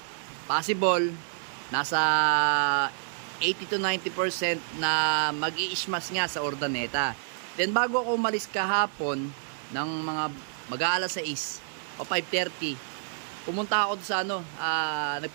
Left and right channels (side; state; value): left; silent; digital silence